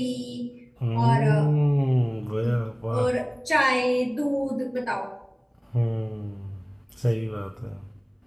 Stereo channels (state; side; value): identical; both; correlation 1.00